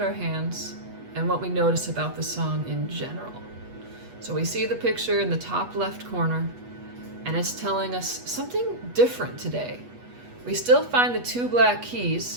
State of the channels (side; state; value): left; late; 8.2 ms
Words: our hands and what we notice about the song in general. So we see the picture in the top left corner, and it's telling us something different today. We still find the two black